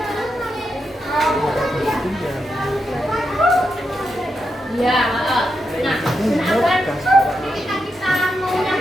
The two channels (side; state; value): both; normal; correlation 0.85